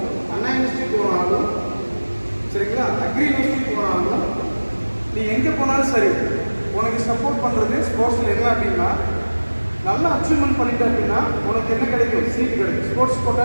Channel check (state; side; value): inverted; both; correlation -1.00